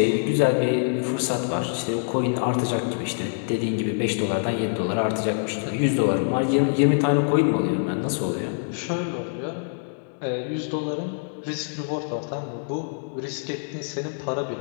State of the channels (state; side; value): silent; right; digital silence